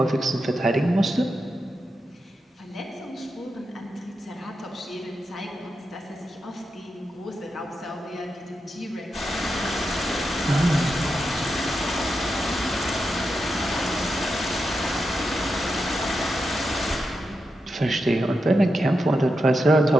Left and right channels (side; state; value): both; normal; correlation 0.87